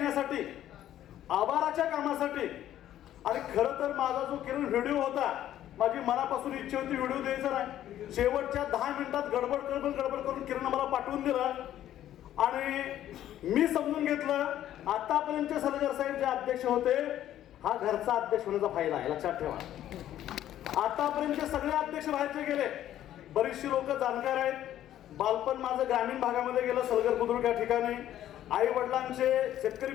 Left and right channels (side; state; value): right; quieter; 12.1 dB